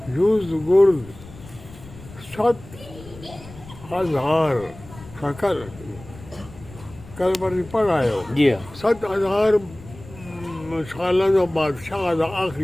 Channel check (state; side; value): noise; left; rumble, 18 dB below the sound